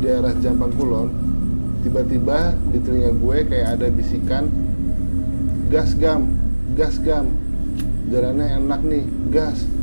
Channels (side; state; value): both; inverted; correlation -1.00